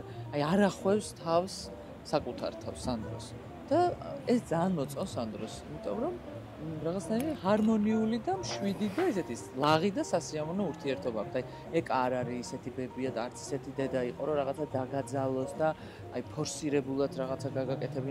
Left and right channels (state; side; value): identical; both; correlation 1.00